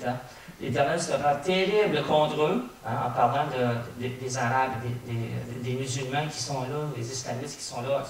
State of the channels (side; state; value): both; identical; correlation 1.00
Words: L'Éternel sera terrible contre eux, hein, en parlant des Arabes, des musulmans qui sont là, des islamistes qui sont là